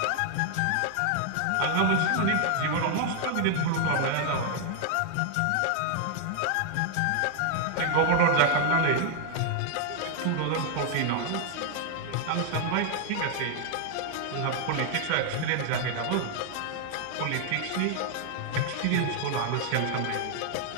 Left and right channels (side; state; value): both; different; correlation 0.00